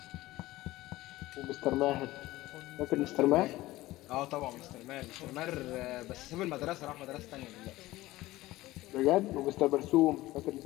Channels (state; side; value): quieter; right; 17.7 dB